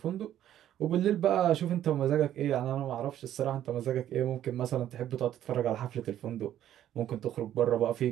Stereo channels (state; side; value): quieter; left; 11.6 dB